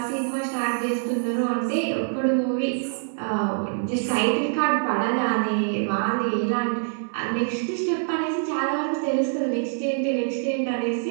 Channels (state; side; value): silent; left; digital silence